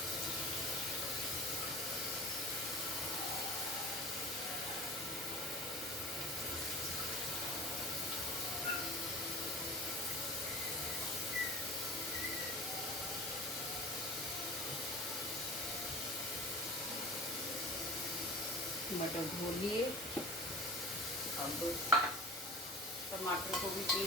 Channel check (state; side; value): normal; both; correlation 0.39